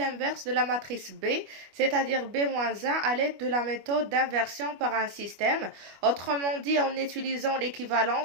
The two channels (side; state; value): left; late; 25 ms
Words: de la matrice B, c'est-à-dire B-1 à l'aide de la méthode d'inversion par un système. Autrement dit, en utilisant